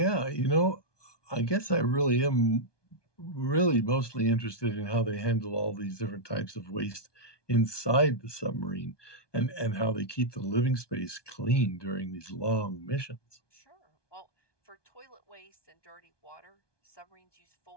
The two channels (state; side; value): late; right; 1.2 ms